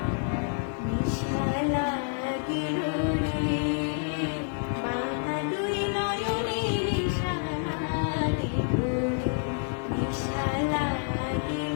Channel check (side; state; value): right; silent; 56 dB below the other